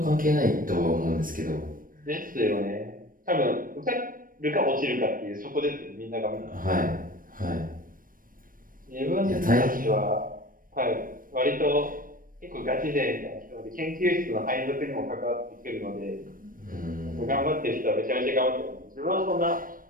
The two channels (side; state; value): left; late; 0.40 ms